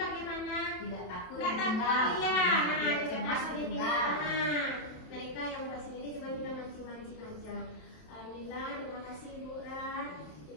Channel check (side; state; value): right; late; 27 ms